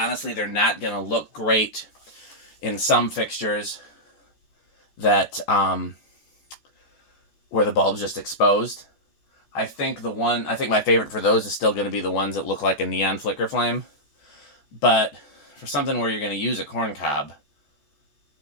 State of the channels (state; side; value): late; right; 14 ms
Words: they're not going to look great in some fixtures that, where the bulb's just exposed. I think my favorite for those is still going to be the ones that look like a neon flicker flame. But for something where you're going to use a corn cob,